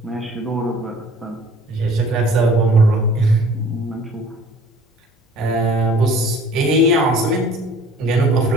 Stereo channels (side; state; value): both; normal; correlation 0.50